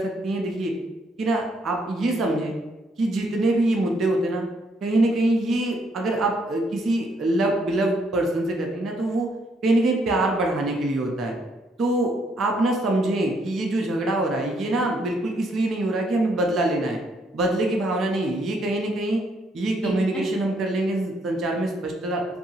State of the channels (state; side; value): normal; both; correlation 0.71